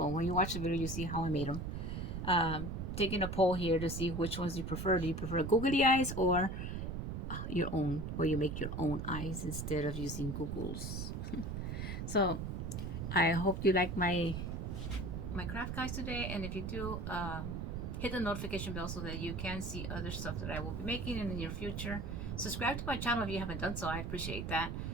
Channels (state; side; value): noise; right; rumble, 4 dB below the sound